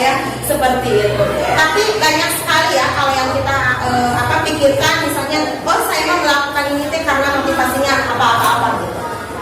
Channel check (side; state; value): both; identical; correlation 1.00